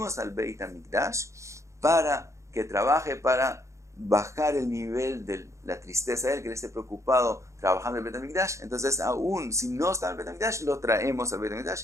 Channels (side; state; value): left; late; 0.14 ms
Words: al Beit HaMikdash para que trabaje, para bajar el nivel de la tristeza de él, que él esté preocupado trabajando en el Beit HaMikdash. Entonces, aún si no está en el Beit HaMikdash, lo traemos al Beit